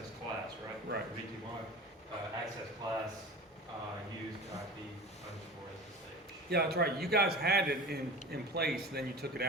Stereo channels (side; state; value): both; normal; correlation 0.34